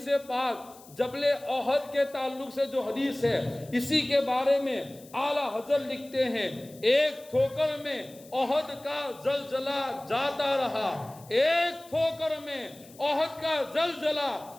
پاک جبل احد کے تعلق سے جو حدیث ہے، اسی کے بارے میں اعلیٰ حضرت لکھتے ہیں، ایک ٹھوکر میں احد کا زلزلہ جاتا رہا، ایک ٹھوکر میں احد کا زلزلہ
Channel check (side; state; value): left; noise; hiss, 23 dB below the sound